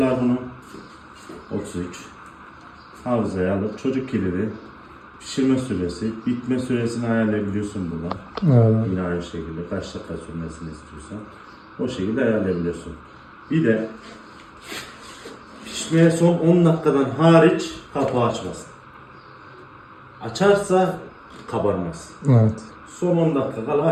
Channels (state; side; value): identical; both; correlation 1.00